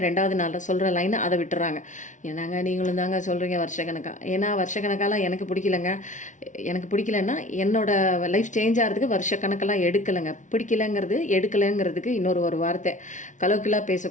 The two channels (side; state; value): right; late; 0.37 ms